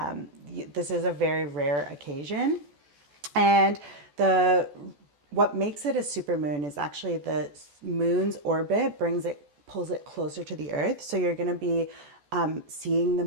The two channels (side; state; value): left; late; 14 ms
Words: this is a very rare occasion. And what makes it a supermoon is actually the moon's orbit pulls it closer to the Earth. So you're going to be seeing the